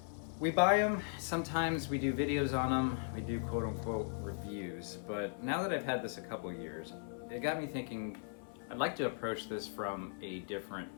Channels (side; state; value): right; silent; 52 dB below the other